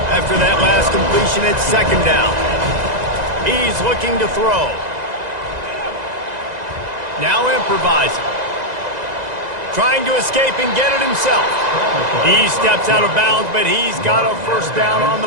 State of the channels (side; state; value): left; late; 2.0 ms